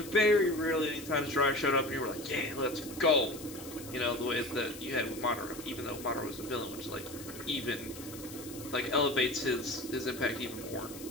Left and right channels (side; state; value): left; noise; hiss, 14 dB below the sound